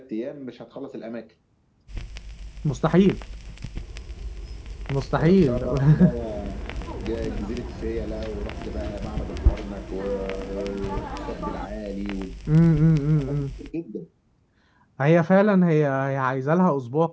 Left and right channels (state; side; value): identical; both; correlation 1.00